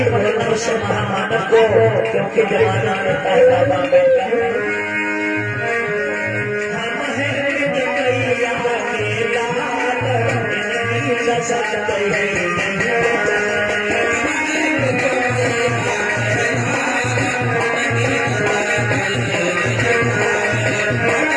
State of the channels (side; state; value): both; identical; correlation 1.00